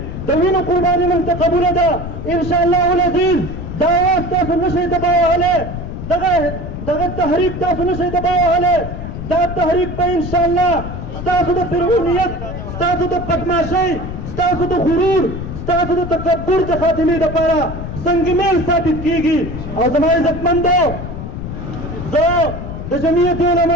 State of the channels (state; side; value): noise; left; rumble, 7 dB below the sound